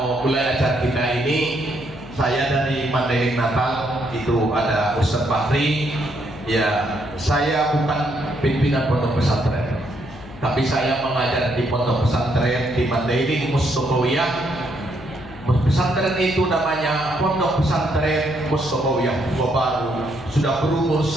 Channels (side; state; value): left; noise; hum, 17 dB below the sound